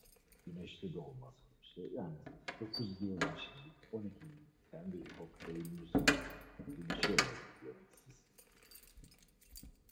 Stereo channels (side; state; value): both; identical; correlation 1.00